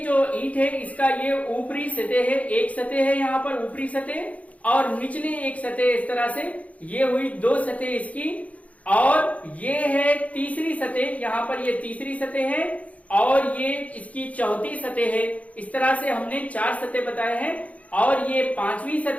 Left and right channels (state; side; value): late; right; 0.068 ms